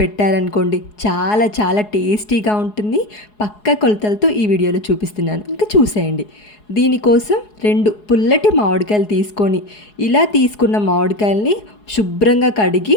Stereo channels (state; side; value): late; right; 4.8 ms